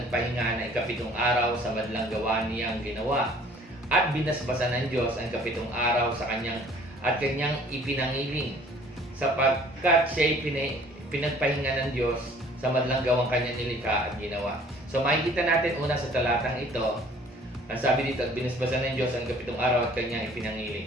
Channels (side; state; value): both; normal; correlation 0.53